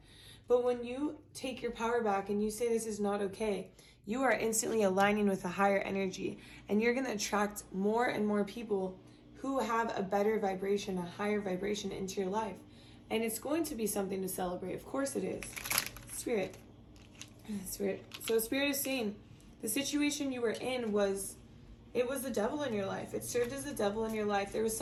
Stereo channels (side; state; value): both; identical; correlation 1.00